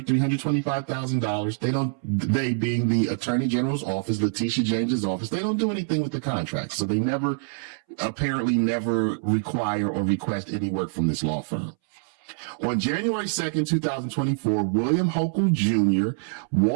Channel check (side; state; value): left; silent; 62 dB below the other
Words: $325,000. They being the Attorney General's office, Letitia James's office, they don't do anything with the contract. So they apparently never require or request any work from this law firm. On January 2nd, 2024, William Hochul Jr.